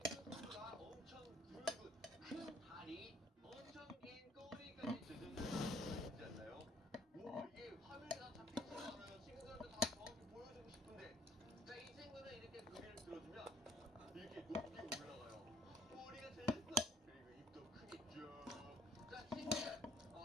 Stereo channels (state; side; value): normal; both; correlation 0.61